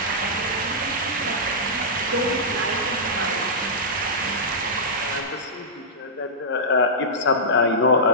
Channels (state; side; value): normal; both; correlation -0.14